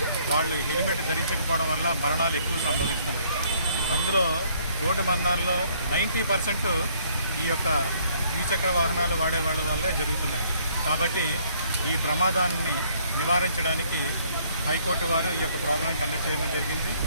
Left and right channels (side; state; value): both; inverted; correlation -0.64